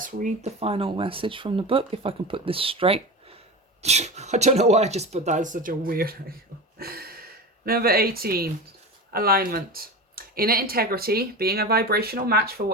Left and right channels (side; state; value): both; normal; correlation 0.27